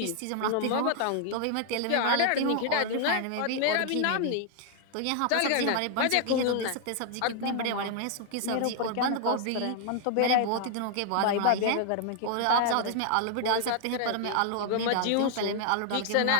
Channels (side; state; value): both; different; correlation 0.00